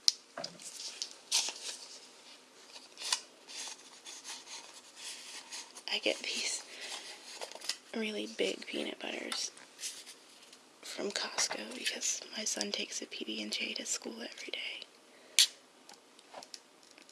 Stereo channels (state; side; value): identical; both; correlation 1.00